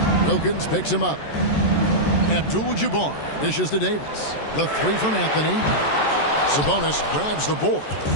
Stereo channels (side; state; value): right; late; 14 ms